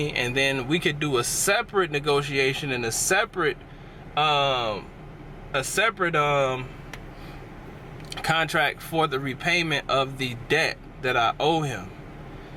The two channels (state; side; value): identical; both; correlation 1.00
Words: And then we could do a separate negotiation and a separate contract for the repayment of the debt that I owe him.